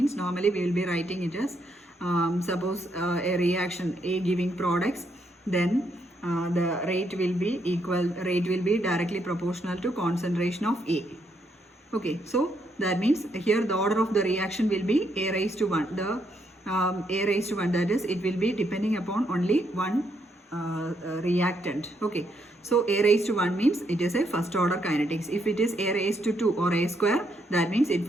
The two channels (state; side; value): normal; both; correlation 0.76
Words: normally we will be writing it as suppose a reaction A giving products, then the rate will be directly proportional to concentration of A. Okay, so that means here the order of the reaction will be A raised to 1. The A raised to 1, that is, it will be depending upon only one reactant. Okay, so A raised to 1 means it is a first order kinetics. If it is A raised to 2 or A square, that means it